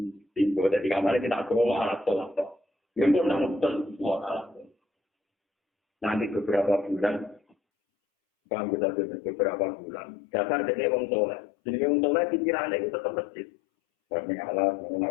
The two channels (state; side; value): drops out; right; at 7.6 s